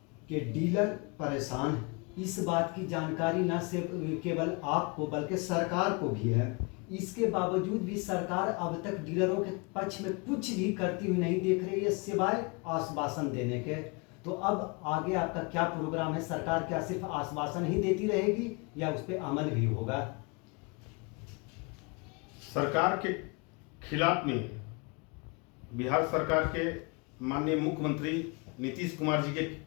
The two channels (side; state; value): right; quieter; 30.4 dB